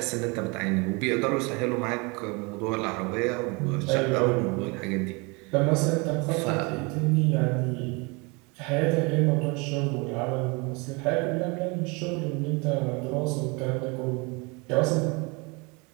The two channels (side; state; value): left; quieter; 28.9 dB